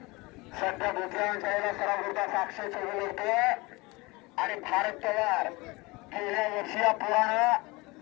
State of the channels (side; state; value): right; quieter; 24.0 dB